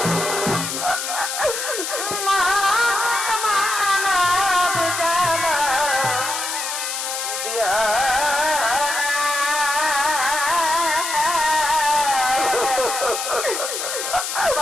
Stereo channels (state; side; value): noise; left; hiss, 4 dB below the sound